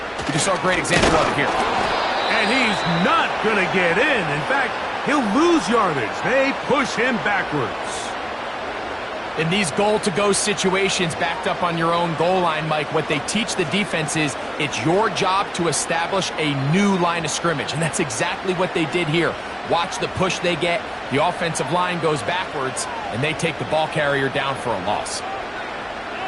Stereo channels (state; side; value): identical; both; correlation 1.00